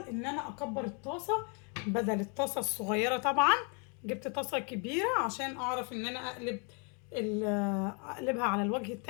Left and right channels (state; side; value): quieter; right; 37.0 dB